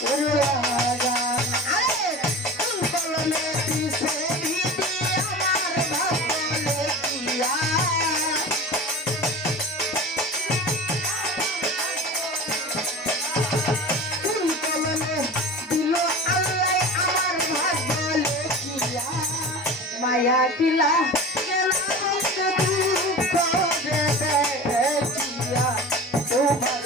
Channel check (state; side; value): normal; both; correlation 0.34